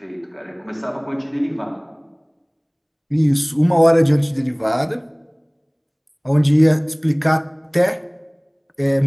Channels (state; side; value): identical; both; correlation 1.00